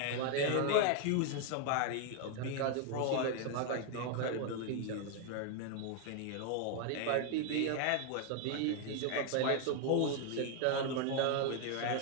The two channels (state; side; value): different; both; correlation 0.00